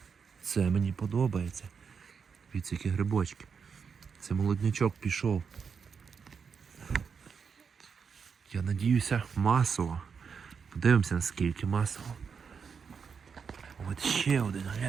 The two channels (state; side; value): quieter; left; 6.1 dB